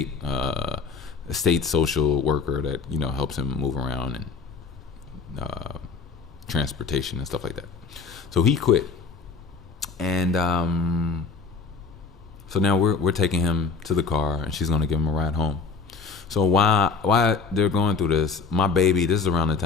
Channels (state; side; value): quieter; right; 5.1 dB